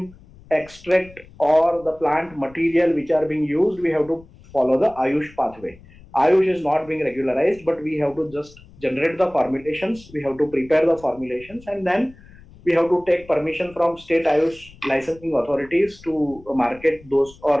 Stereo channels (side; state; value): left; noise; rumble, 23 dB below the sound